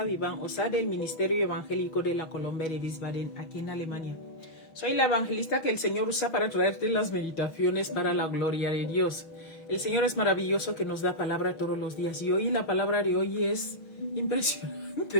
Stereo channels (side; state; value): right; late; 6.2 ms